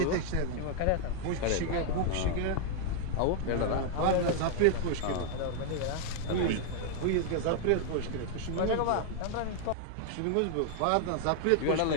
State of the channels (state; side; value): different; both; correlation 0.00